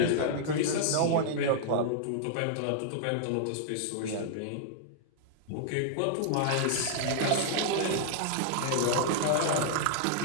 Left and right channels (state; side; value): different; both; correlation -0.01